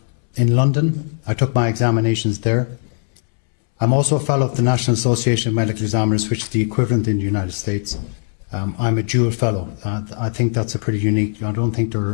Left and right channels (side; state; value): right; silent; 66 dB below the other